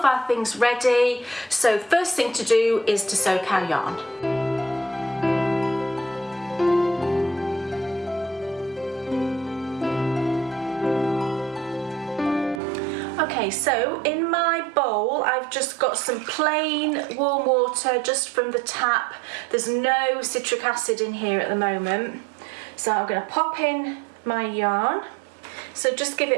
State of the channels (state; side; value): drops out; left; at 12.6 s